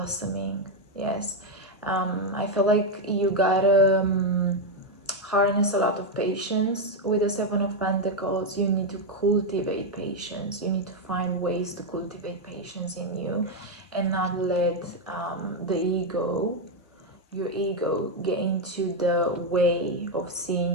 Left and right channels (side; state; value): both; normal; correlation 0.04